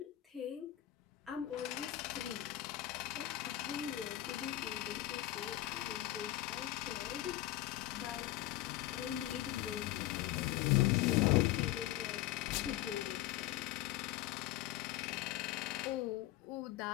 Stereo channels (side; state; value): right; quieter; 14.9 dB